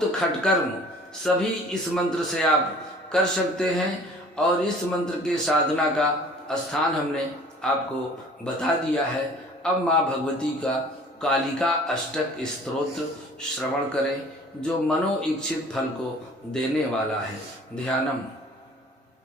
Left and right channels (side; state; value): both; normal; correlation 0.50